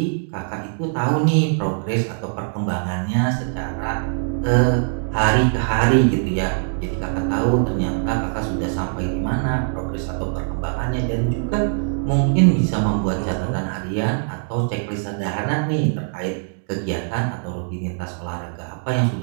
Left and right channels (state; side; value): silent; left; 64 dB below the other